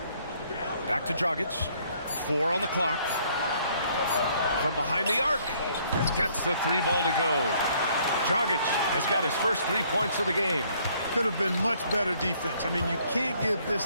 Back to Dragic. 4 on the clock. From behind the arc. Gets the 3 ball to go. Dragic has got his first 3 points of the game. Could have been much better defense. I mean, you can't give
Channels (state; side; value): inverted; both; correlation -0.64